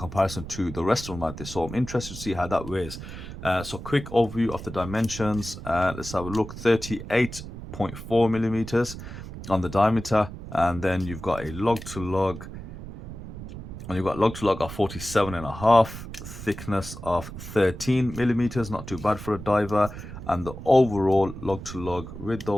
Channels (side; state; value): right; noise; rumble, 11 dB below the sound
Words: to the rest of them out there, so I'm interested to see how that weighs. So quick overview of the dimensions. Let's have a look. 38.4 millimeters on the diameter, and then you've got a lug to lug, and you've got lug to lug of 47.5, thickness of 13 millimeters, not too bad for a diver, and the overall lug to lug with